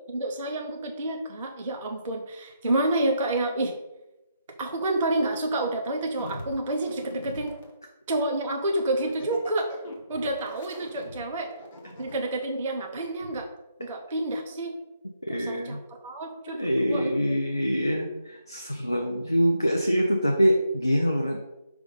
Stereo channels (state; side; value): inverted; both; correlation -0.78